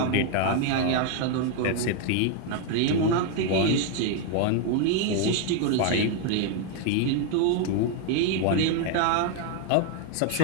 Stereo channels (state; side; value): different; both; correlation 0.01